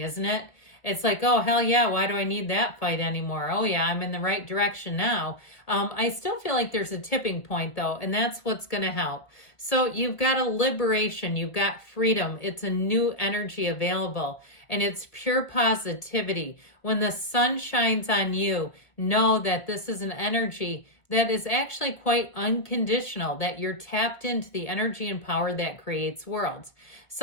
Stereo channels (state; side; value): late; right; 1.7 ms